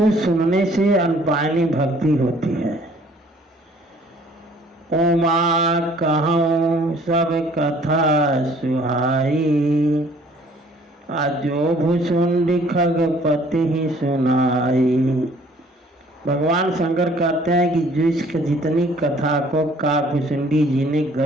सुनने से अनपायनी भक्ति होती है। उमा कहूँ सब कथा सुहाई, आजो भुसुंडी खगपति ही सुनाई। भगवान शंकर कहते हैं कि जिसक जितनी कथा को काकभुसुंडी जी ने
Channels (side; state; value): both; normal; correlation 0.57